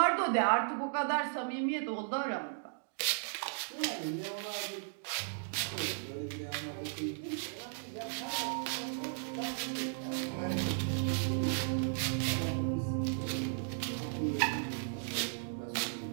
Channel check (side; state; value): left; silent; digital silence